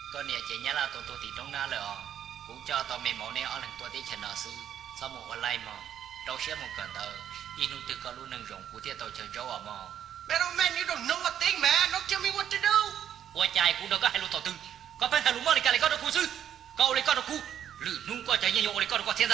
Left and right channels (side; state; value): left; quieter; 9.8 dB